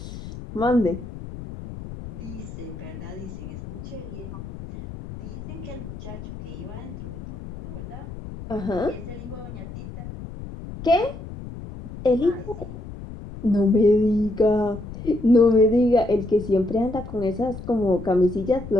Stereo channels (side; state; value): left; noise; rumble, 11 dB below the sound